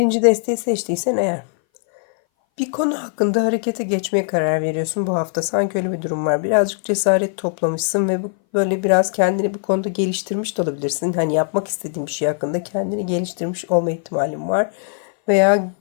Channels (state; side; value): silent; right; 60 dB below the other